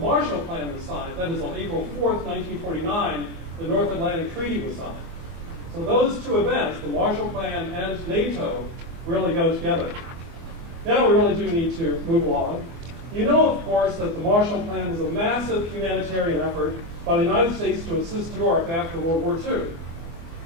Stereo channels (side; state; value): left; late; 24 ms